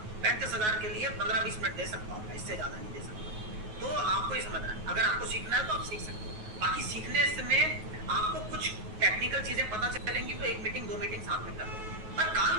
35,000 के लिए 15-20 मिनट दे सकता हूँ, इससे ज्यादा नहीं दे सकता। तो आपको ये समझना है, अगर आपको सीखना है तो आप सीख सकते हो, बाकी सीखने में आपको कुछ टेक्निकल चीजें पता चलेंगी तो 1 मीटिंग 2 मीटिंग साथ में कर लो, पर काम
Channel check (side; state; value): left; late; 9.3 ms